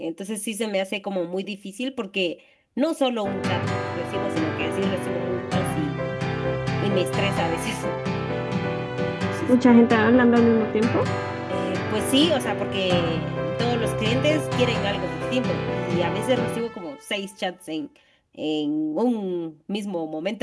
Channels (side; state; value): both; identical; correlation 1.00